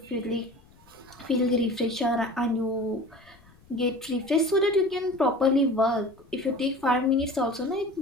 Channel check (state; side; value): noise; left; rumble, 27 dB below the sound